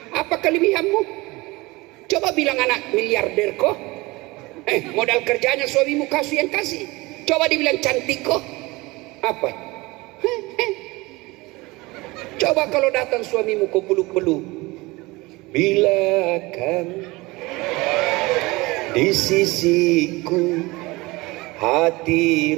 Apa kelebihanmu? Coba bilang anak miliarder kok. Modal kerjanya suamimu kasih yang kasih. Coba dibilang cantik kok. Apa? Coba kalau datang suamimu kau peluk-peluk. Bila kamu di sisiku, hati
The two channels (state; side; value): quieter; left; 22.4 dB